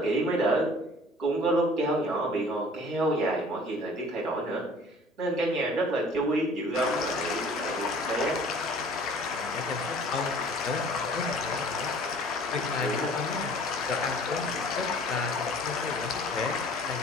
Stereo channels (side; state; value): both; normal; correlation 0.50